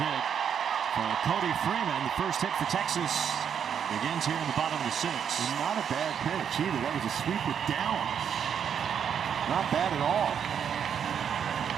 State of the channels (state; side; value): quieter; left; 8.0 dB